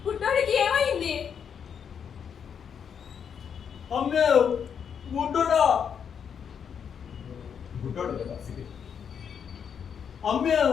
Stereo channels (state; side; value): quieter; right; 7.4 dB